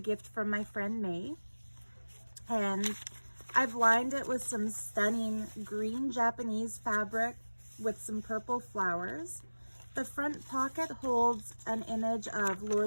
from my friend May. And I've lined it with some stunning green Japanese fabric with some purple flowers. The front pocket holds an image of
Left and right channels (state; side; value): inverted; both; correlation -1.00